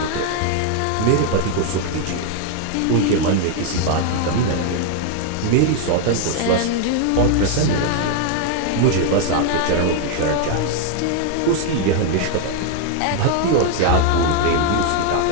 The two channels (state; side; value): different; both; correlation 0.00